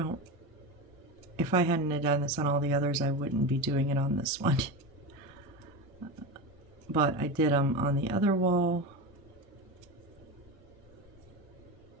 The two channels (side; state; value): both; normal; correlation 0.22